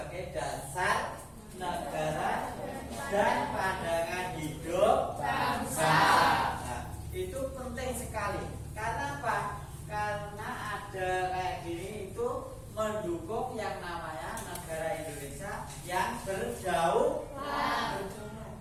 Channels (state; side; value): identical; both; correlation 1.00